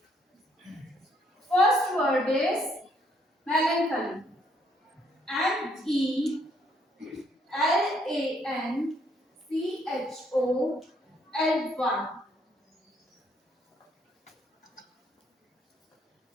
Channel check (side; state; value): both; normal; correlation 0.69